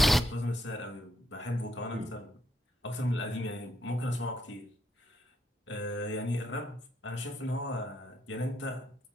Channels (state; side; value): normal; both; correlation 0.76